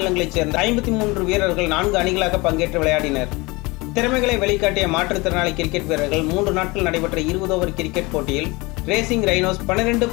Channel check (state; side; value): quieter; right; 24.2 dB